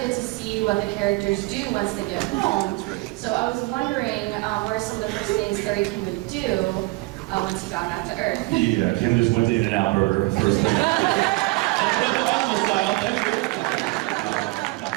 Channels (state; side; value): quieter; left; 23.4 dB